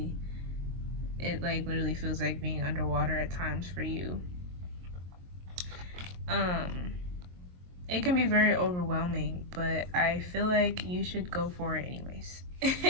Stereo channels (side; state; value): left; late; 22 ms